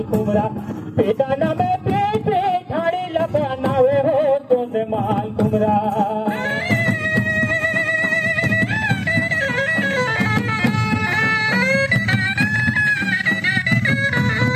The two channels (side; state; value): both; identical; correlation 1.00